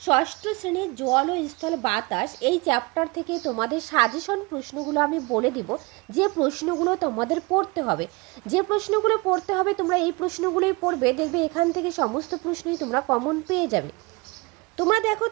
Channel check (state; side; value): quieter; left; 26.2 dB